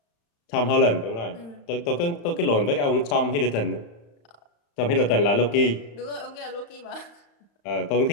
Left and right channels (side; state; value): right; late; 35 ms